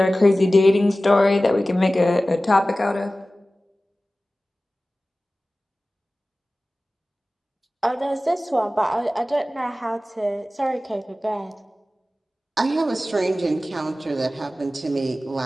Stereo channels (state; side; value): normal; both; correlation 0.96